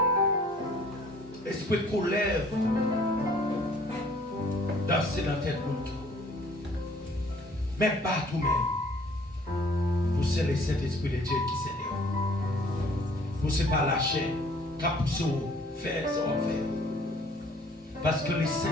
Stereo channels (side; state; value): both; normal; correlation 0.56